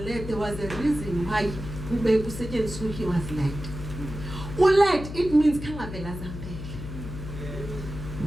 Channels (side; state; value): left; noise; hum, 9 dB below the sound